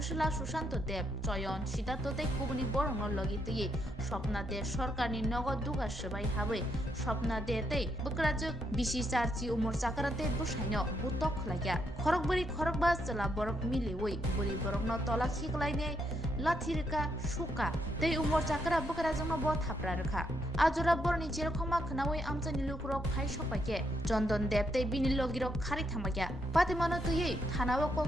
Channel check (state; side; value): normal; both; correlation 0.77